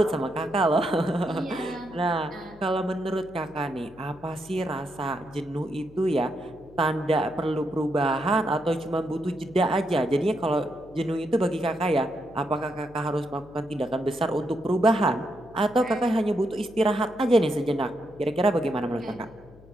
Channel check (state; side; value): noise; left; hum, 23 dB below the sound